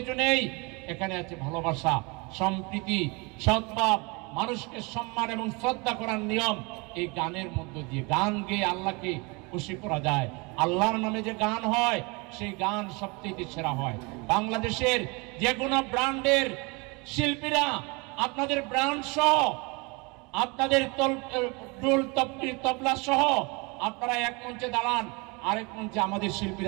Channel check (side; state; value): left; quieter; 28.4 dB